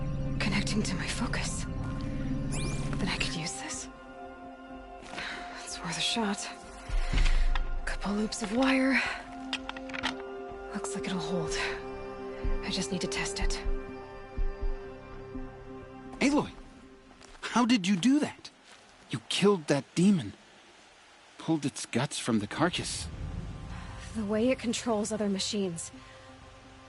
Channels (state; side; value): identical; both; correlation 1.00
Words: connecting to my focus. Then I could use this. It's worth a shot. Couple loops of wire. Looks like it'll hold. I just need to test it. Aloy! How did you do that? You killed that demon. Pulled its guts from the carcass. The way it controls other machines.